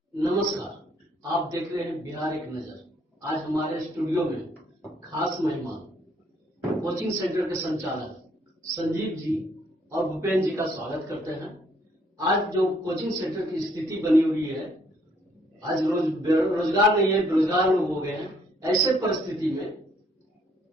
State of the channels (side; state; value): both; normal; correlation 0.67